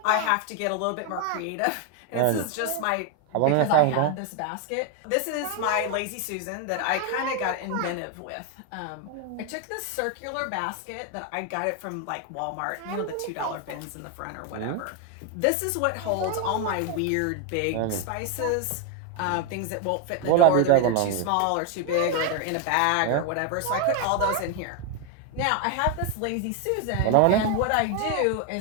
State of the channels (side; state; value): both; different; correlation 0.01